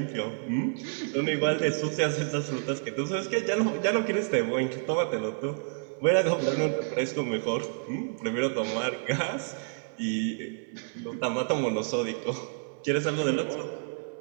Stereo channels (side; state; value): left; silent; 58 dB below the other